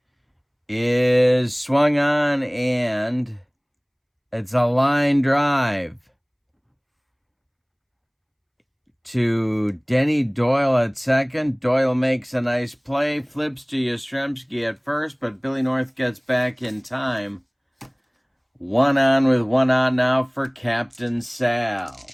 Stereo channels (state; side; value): identical; both; correlation 1.00